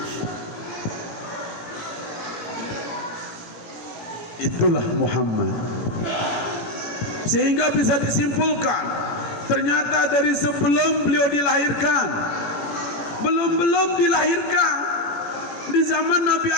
Itulah Muhammad. Sehingga bisa disimpulkan, ternyata dari sebelum beliau dilahirkan, belum dilahirkan, di zaman Nabi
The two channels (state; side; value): late; right; 17 ms